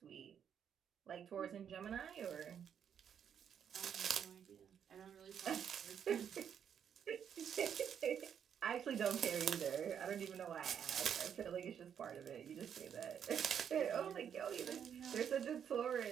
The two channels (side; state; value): left; quieter; 8.3 dB